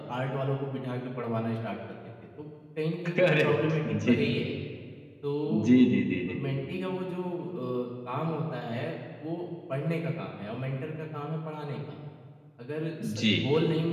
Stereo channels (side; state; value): both; identical; correlation 1.00